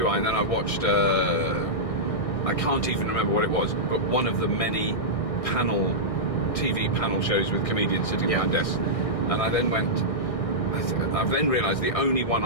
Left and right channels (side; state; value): right; late; 1.6 ms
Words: and then I watched, I can't even remember what it was, but one of the many TV panel shows with comedians sitting behind desks. And I then I've then realised the only one